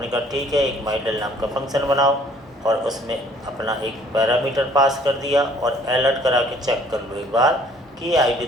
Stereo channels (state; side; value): normal; both; correlation 0.58